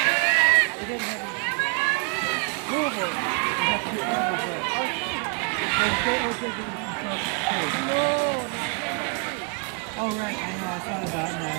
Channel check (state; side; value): quieter; left; 36.1 dB